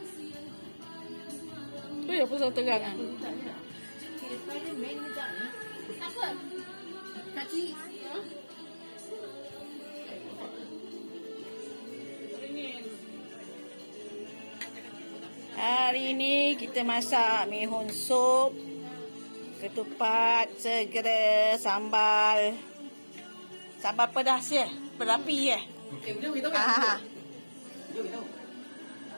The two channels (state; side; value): inverted; both; correlation -1.00